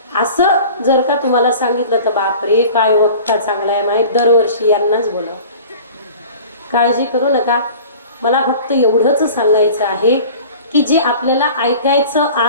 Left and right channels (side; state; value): both; inverted; correlation -0.42